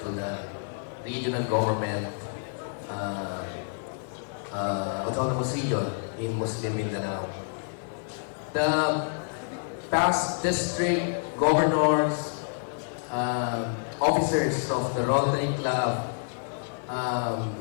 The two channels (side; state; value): right; silent; digital silence